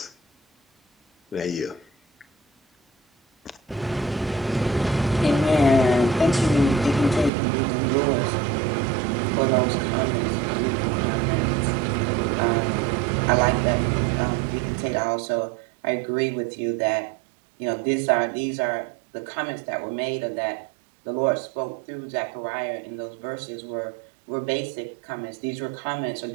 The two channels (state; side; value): drops out; left; at 7.3 s